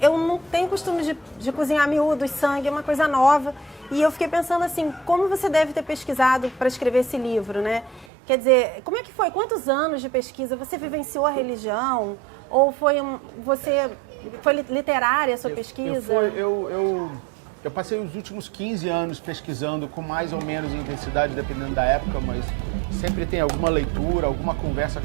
eu não tenho costume de cozinhar miúdos, sangue, é uma coisa nova. E eu fiquei pensando assim, como você deve ter pesquisado para escrever esse livro, né? Quer dizer, como é que foi? Quantos anos de pesquisa? Você vivenciou a religião? Ou foi literária a sua pesquisa? Eu passei os últimos 15 anos pesquisando com mais ou menos intensidade, dependendo da época, mas sempre tem alguma leitura, alguma conversa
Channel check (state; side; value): drops out; left; at 8.1 s